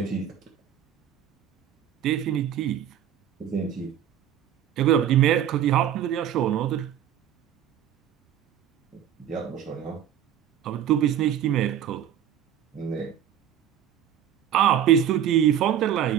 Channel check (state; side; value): quieter; left; 10.0 dB